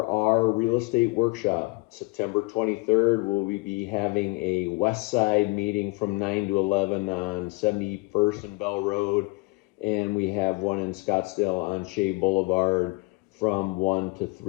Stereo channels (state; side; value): quieter; right; 25.9 dB